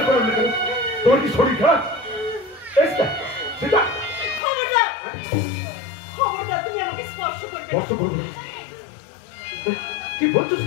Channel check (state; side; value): drops out; right; at 4.4 s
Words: করেন না, তোমার কি শরীর খারাপ? সেটা খবরদার, খবরদার, তুমি আমাকে স্পর্শ করবে না। স্পর্শ করবো না? কি বলছো